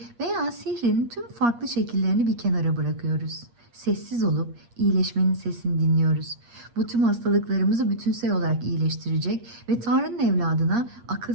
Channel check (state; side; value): late; left; 8.5 ms